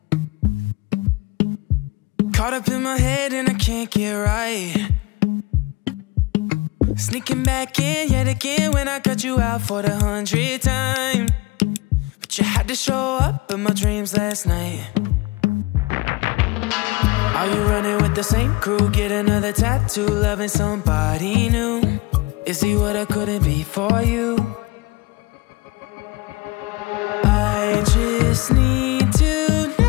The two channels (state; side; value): quieter; right; 23.1 dB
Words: Caught up in my head and I can't get right. Sneaking back in yet again when I cut you out for the 100th time. But you had to show up in my dreams last night. Are you running with the same crew? Get another tattoo, loving somebody new. Is he what I couldn't be for you? I just need to